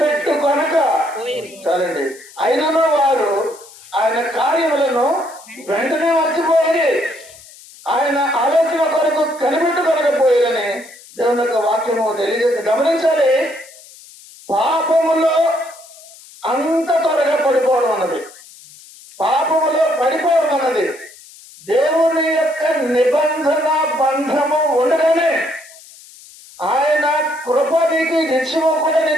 చాలండి. అయినను వారు ఆయన కార్యములను వెంటనే మర్చిపోయి ఆయన ఆలోచన కొరకు కనిపెట్టుకొనకపోయారని దేవుని యొక్క వాక్యము తెలియజేసి గమనించాలి. పాపములో అంత త్వరగా పడిపోవడం అన్నది, పాపములో పడిపోవడం అన్నది దేవుని యొక్క నిబంధన బంధము ఉండగానే ఆయన కృప నీకు నిత్యము కూడా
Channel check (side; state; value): left; noise; hiss, 21 dB below the sound